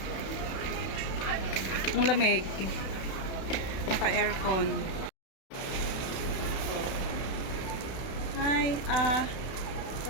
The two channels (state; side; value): late; right; 32 ms